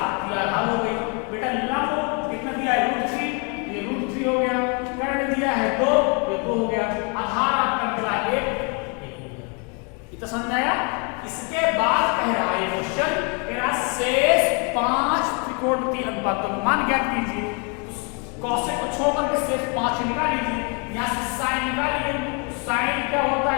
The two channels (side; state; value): right; quieter; 34.9 dB